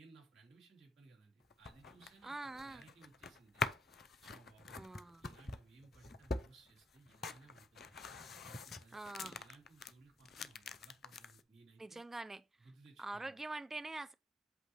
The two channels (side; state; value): both; normal; correlation 0.73